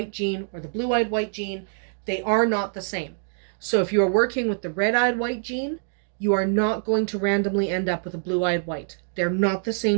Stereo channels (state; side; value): silent; left; digital silence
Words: gene or the blue-eyed white gene. They are not the same. So if you are working with the red-eyed white gene, you are not going to randomly end up with a blue-eyed white. They're not the